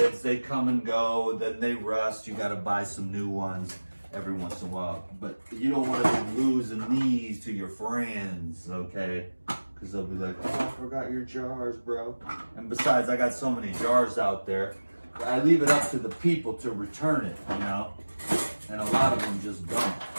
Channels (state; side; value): inverted; both; correlation -1.00